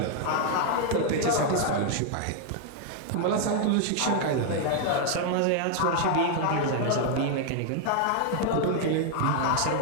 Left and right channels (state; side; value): different; both; correlation 0.00